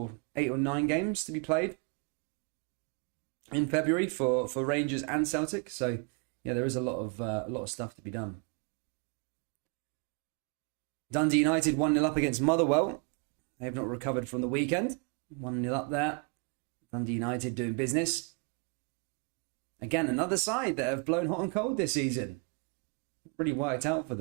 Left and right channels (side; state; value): left; quieter; 34.1 dB